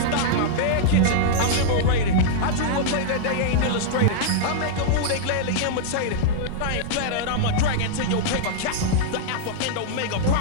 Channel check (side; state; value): both; different; correlation -0.01